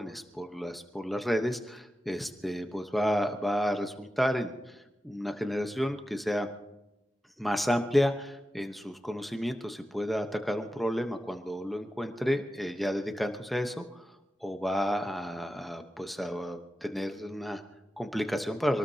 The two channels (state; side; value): normal; both; correlation 0.92